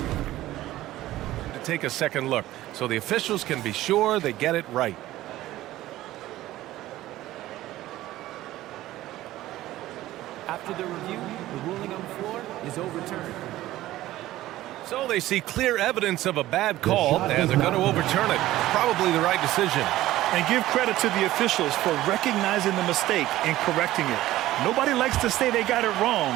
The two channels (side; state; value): left; quieter; 15.4 dB